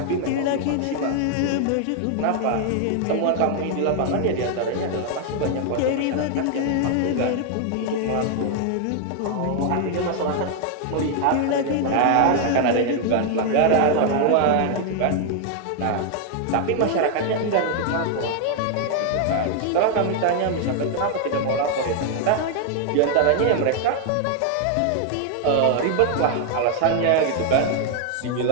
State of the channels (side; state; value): both; different; correlation 0.00